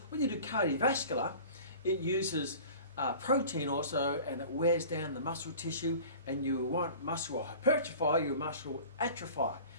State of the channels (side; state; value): both; inverted; correlation -0.42